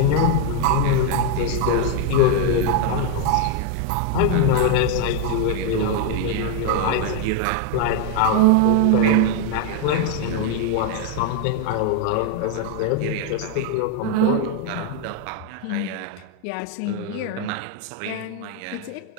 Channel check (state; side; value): different; both; correlation 0.01